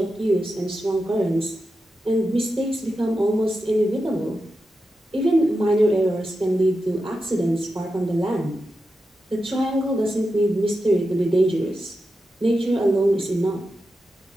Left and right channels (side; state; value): both; normal; correlation 0.89